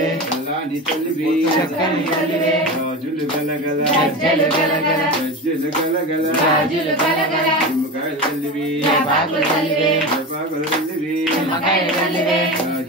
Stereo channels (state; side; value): normal; both; correlation 0.25